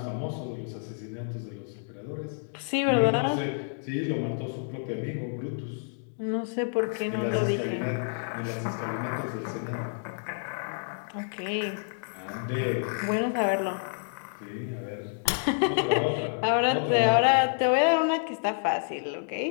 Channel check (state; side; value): silent; right; digital silence